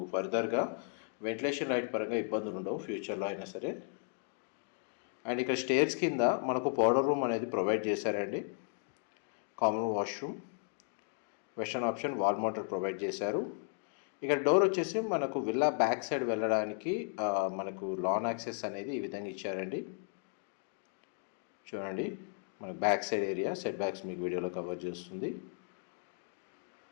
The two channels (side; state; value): right; silent; 54 dB below the other